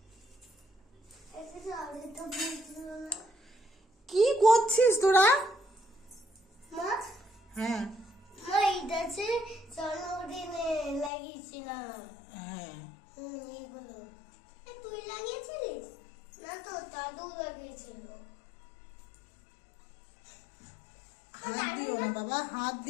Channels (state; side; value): drops out; right; at 11.1 s